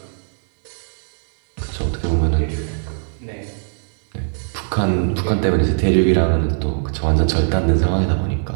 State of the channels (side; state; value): left; silent; digital silence